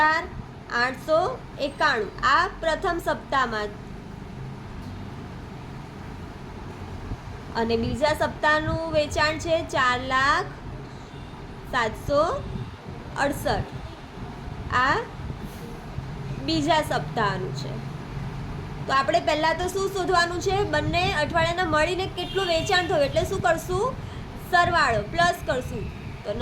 આ પ્રથમ સપ્તાહમાં. અને બીજા સપ્તાહનું વેચાણ છે 4,768. આ બીજા સપ્તાહનું છે. તો આપણે પહેલાં તો શું શોધવાનું છે? બંને અઠવાડિયાના મળીને કેટલું વેચાણ થયું, એટલે શું કરશું? સરવાળો પ્લસ કરશું. તો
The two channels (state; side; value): identical; both; correlation 1.00